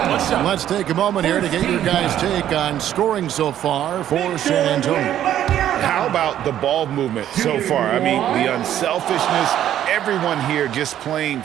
Let's take a moment here to get your guys' take on scoring so far for San Antonio. How about the ball movement so far? I mean, the unselfishness, everyone here just playing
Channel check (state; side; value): quieter; left; 11.3 dB